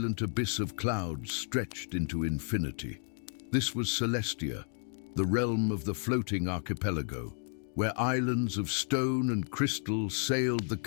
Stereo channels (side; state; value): right; silent; 56 dB below the other